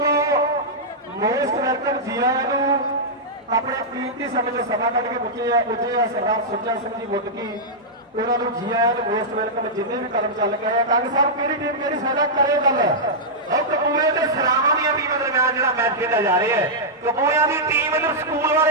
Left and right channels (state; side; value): normal; both; correlation -0.09